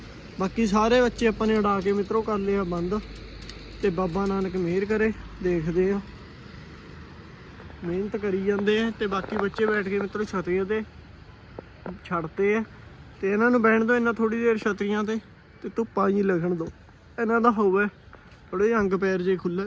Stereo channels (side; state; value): both; identical; correlation 1.00